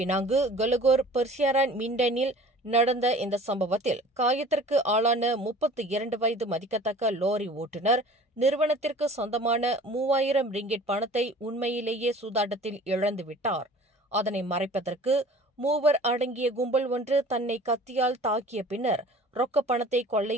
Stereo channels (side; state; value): both; normal; correlation 0.46